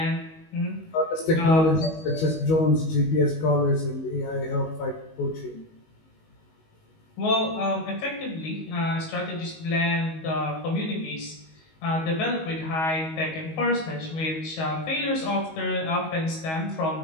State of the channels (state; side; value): late; right; 19 ms